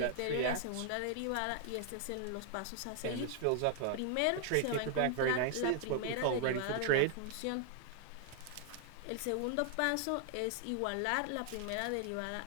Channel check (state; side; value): different; both; correlation 0.00